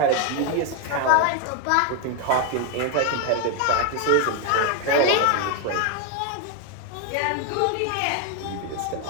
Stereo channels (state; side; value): different; both; correlation 0.02